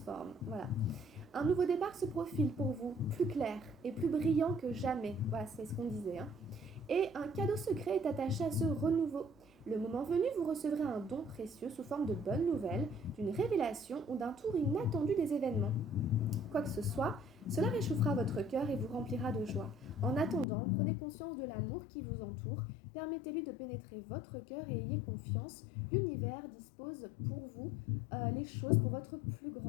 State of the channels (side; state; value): right; drops out; at 20.5 s